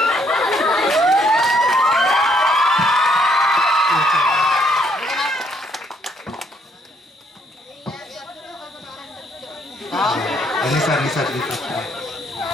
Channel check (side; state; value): both; normal; correlation 0.69